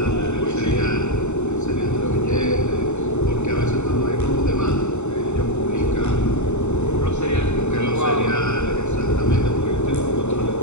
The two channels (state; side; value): late; right; 0.82 ms